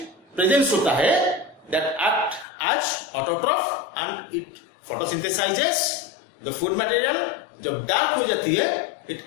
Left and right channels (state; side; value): drops out; right; at 2.5 s